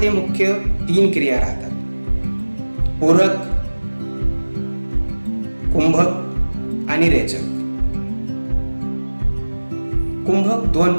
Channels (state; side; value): inverted; both; correlation -1.00